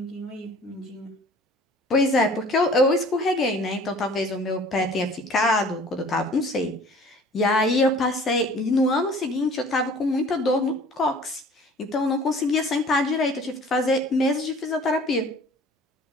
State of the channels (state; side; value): normal; both; correlation 0.49